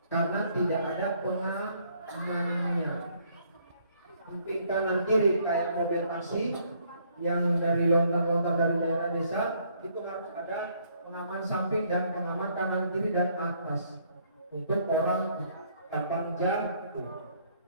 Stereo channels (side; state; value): both; inverted; correlation -0.66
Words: Karena tidak ada pengamannya. Samping kanan kiri kayak mobil taksi yang dari lontar-lontar dari daerah desa, itu harus ada pengaman samping dan pengaman kanan kiri dan atas untuk orang gampang jatuh.